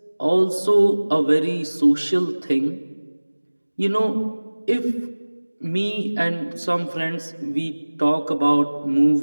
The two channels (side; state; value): both; inverted; correlation -1.00